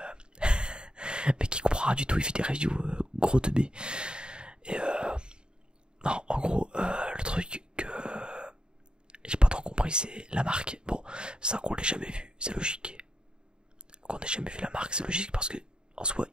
rien du tout, il fait des reviews gros de B. Et non, en gros, le truc que j'ai pas trop compris, c'est la marque. Bon, ça qu'on l'ait jamais vu, c'est logique. Qu'on ait jamais vu la marque, c'est logique parce que en soi,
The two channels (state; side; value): late; left; 0.049 ms